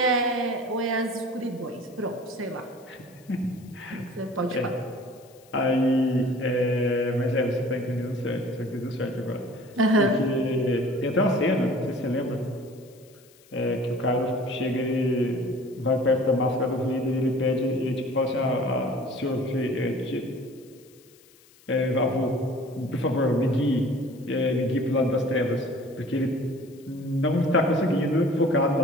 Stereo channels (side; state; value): left; noise; hiss, 28 dB below the sound